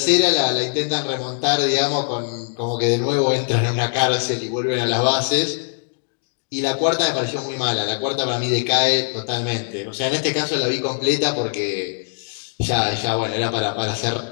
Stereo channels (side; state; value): right; silent; digital silence